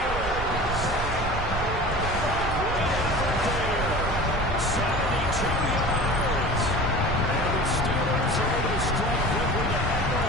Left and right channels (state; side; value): noise; right; rumble, 7 dB below the sound